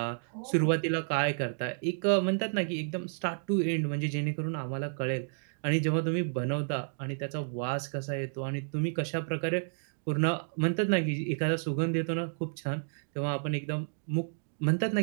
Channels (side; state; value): left; silent; digital silence